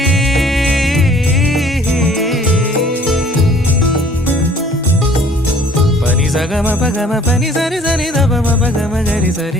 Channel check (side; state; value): both; normal; correlation 0.55